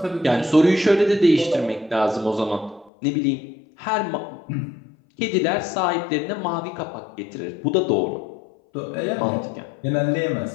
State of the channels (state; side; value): drops out; right; at 2.9 s